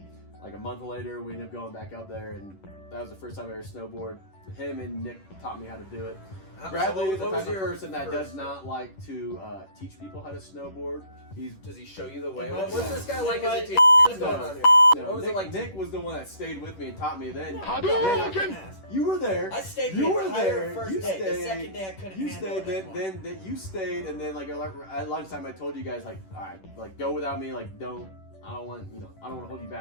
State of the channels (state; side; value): late; right; 10 ms